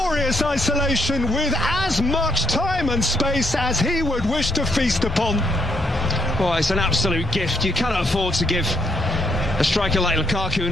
isolation with as much time and space as he would wish to feast upon. Well, it's an absolute gift. You cannot afford to give a striker like Lukaku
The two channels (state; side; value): normal; both; correlation 0.72